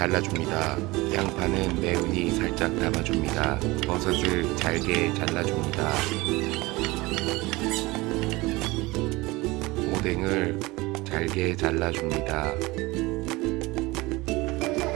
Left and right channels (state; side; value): quieter; left; 21.9 dB